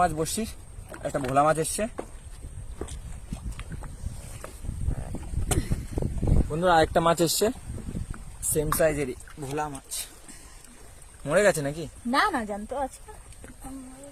বসছি, একটা ভোলা মাছ এসছে। বন্ধুরা, আরেকটা মাছ এসছে, সেম সাইজেরই ভোলা মাছ। মরে গেছে নাকি? না না, জানতো আছে।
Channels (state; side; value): identical; both; correlation 1.00